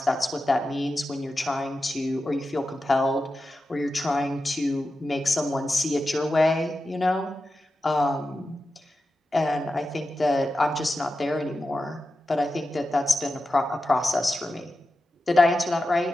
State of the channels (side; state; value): both; normal; correlation 0.91